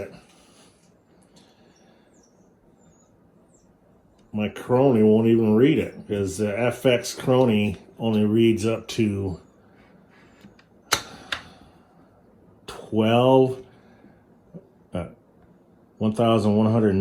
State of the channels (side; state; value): both; identical; correlation 1.00